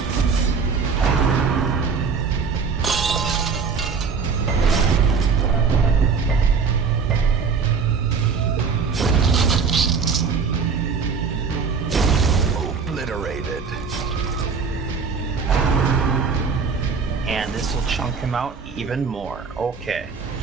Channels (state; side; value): quieter; left; 5.5 dB